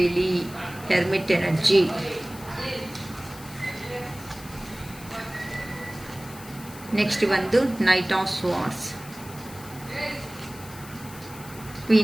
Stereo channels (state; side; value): noise; left; hiss, 17 dB below the sound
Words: ಹೆರ್ಮಿಟ್ ಎನರ್ಜಿ, ನೆಕ್ಸ್ಟ್ ಬಂದು knight of swords,